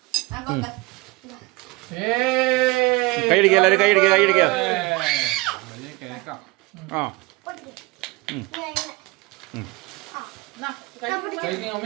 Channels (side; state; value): left; quieter; 23.6 dB